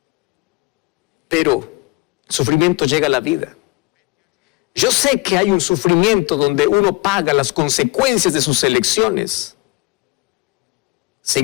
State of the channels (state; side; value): quieter; right; 25.3 dB